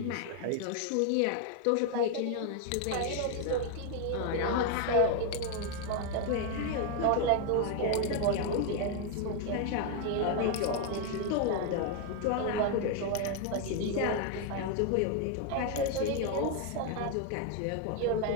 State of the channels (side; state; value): both; different; correlation 0.01